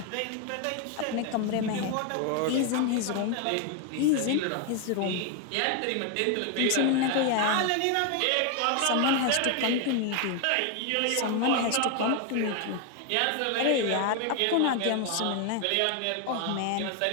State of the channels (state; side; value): different; both; correlation 0.01